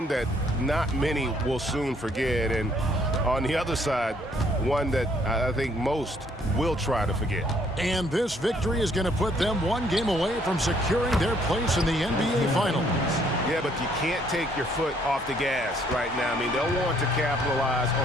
that not many will soon forget. And on the other side, one that I think most will try to forget. And this victory is going to put them 1 game away from securing their place in the NBA Finals. Yeah, but you can't take your foot off the gas right now. I mean, they'll want to capitalize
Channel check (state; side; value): normal; both; correlation 0.65